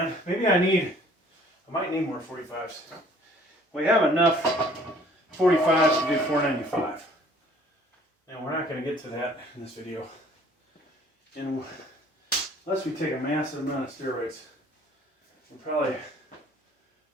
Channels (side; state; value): both; normal; correlation 0.56